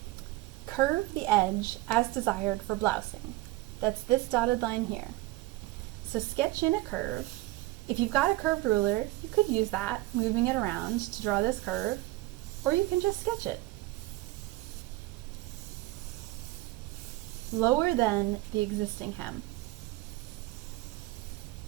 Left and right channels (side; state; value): left; quieter; 18.6 dB